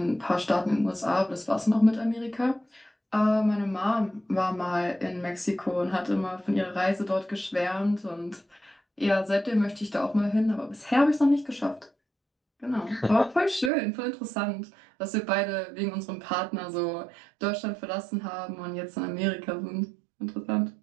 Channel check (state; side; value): drops out; left; at 13.7 s